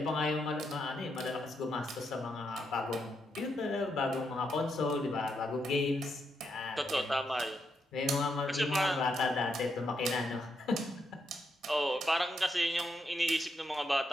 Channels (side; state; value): both; normal; correlation 0.81